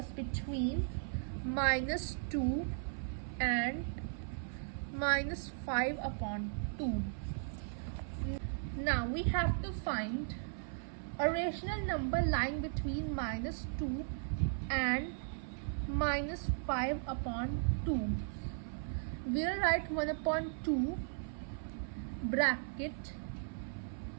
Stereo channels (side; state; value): left; silent; 53 dB below the other